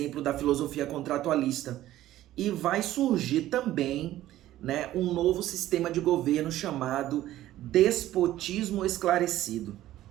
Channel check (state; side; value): quieter; left; 14.2 dB